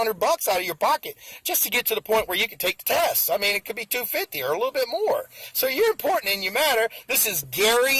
out of your pocket just to get to the point where you can take the test. I mean, it could be $250 or a little bit more. So you're important and you matter. This is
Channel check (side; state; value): both; identical; correlation 1.00